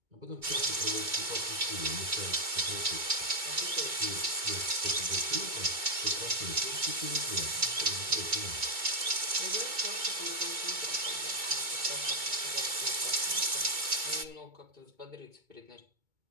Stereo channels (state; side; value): late; left; 2.2 ms